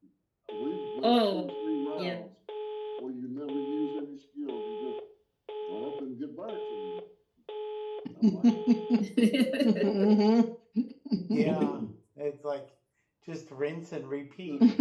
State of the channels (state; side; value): identical; both; correlation 1.00